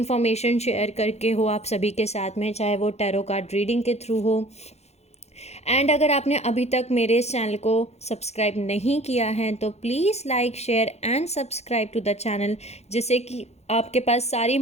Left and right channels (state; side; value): late; right; 0.31 ms